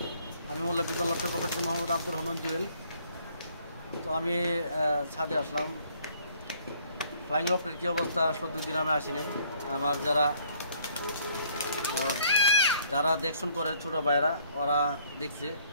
আমি মোল্লা বিদ্যাল লফটের পক্ষ থেকে মোহাম্মদ আব্দুর রহমান জুয়েল। তো আমি ছাদে আসলাম। ফ্লাইং লফটের কী অবস্থা, আসলে 2 দিন আমি আসি নাই। আমার যারা দেখশন করে ছোটো ভাইয়েরা, ওরা দেখছে।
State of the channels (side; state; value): both; inverted; correlation -0.63